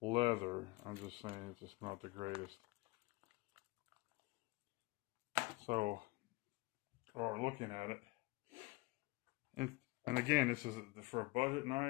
I'm just saying it's just not the greatest. So, or looking at it, and again, this is for a budget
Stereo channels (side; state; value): right; quieter; 23.8 dB